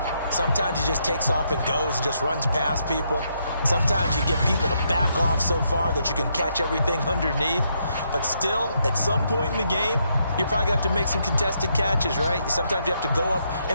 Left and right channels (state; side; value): inverted; both; correlation -0.77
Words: Sometimes he just takes off and goes and just runs past people. Sometimes you get people to back off so far that you can catch everything underneath. But still, at some point in the game, you're probably going to have to make some contested catches, right? Sometimes you have to go up